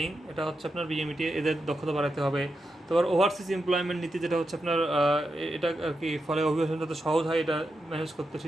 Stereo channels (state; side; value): normal; both; correlation 0.87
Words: এটা হচ্ছে আপনার BMET, এদের দক্ষতা বাড়াতে হবে। তারপর ওভারসিজ এমপ্লয়মেন্ট নীতি, যেটা হচ্ছে আপনার এটা আর কি, ফলে অভিবাসন যাতে সহজ হয় এটা ম্যানেজ করতে